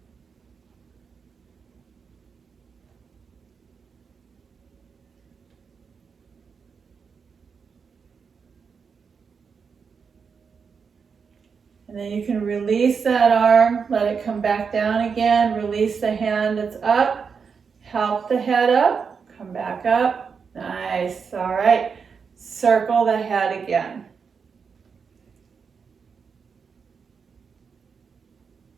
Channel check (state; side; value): quieter; left; 5.9 dB